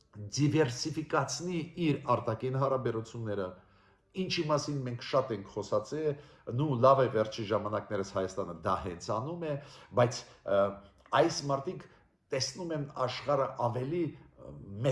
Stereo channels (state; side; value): identical; both; correlation 1.00